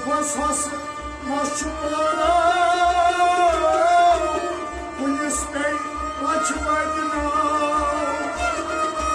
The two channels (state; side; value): identical; both; correlation 1.00